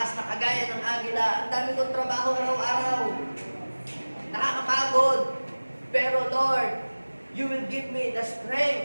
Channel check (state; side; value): inverted; both; correlation -1.00